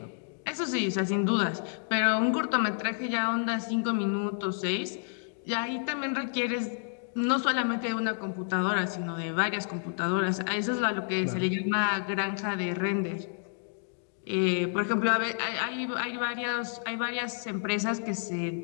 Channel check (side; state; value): right; silent; digital silence